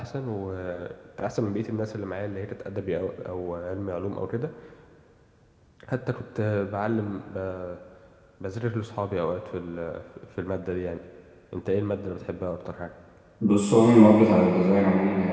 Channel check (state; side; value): identical; both; correlation 1.00